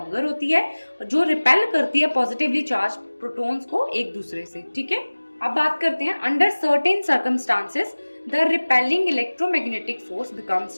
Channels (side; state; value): both; inverted; correlation -1.00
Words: होती है, जो रिपेल करती है पॉजिटिवली चार्ज प्रोटॉन्स को एक दूसरे से, ठीक है। अब बात करते हैं under certain circumstances the repelling electromagnetic force become